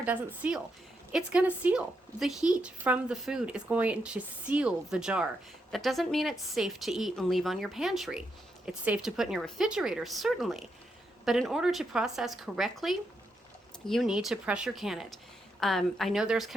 doesn't seal. It's going to seal. The heat from the food is going to seal the jar. That doesn't mean it's safe to eat and leave on your pantry. It's safe to put in your refrigerator, certainly. But in order to process correctly, you need to pressure can it. I know there's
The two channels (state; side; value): normal; both; correlation 0.82